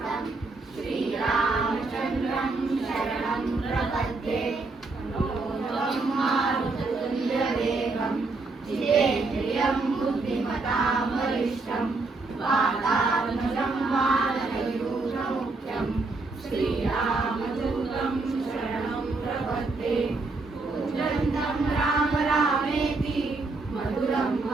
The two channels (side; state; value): left; quieter; 3.6 dB